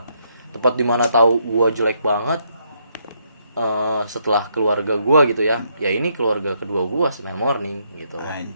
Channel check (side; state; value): both; inverted; correlation -0.74